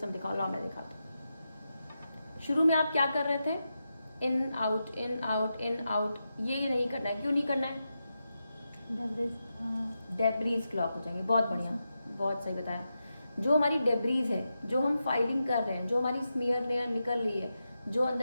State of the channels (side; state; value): both; inverted; correlation -0.89